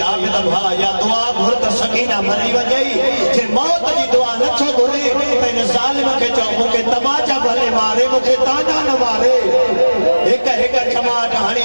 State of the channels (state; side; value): inverted; both; correlation -1.00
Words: آبد بھا یا دعا گھر کر سکینہ مری ونیائی چھے موت جی دعا نچو گھرے تین ظالم کے چاہو مکہ تماچا بھلے مارے مکہ تانا نہ مارے ایک چماٹ ہانی